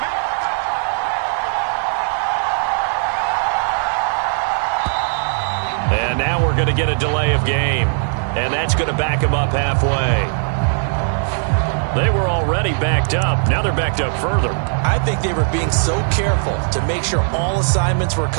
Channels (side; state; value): left; silent; digital silence